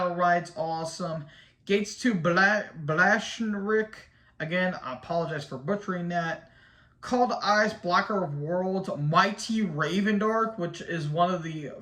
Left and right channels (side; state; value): both; identical; correlation 1.00